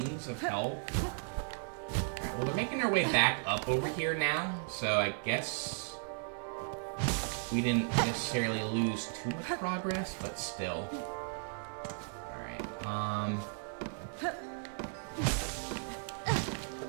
of health. Alright, well, they're making their way back up over here now. So I guess... we didn't necessarily lose too much progress, but still. Alright,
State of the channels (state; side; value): silent; left; 54 dB below the other